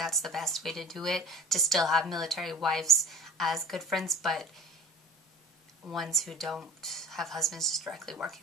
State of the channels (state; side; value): normal; both; correlation 0.41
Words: the best way to do it, to still have military wives as good friends, but ones who don't have husbands just directly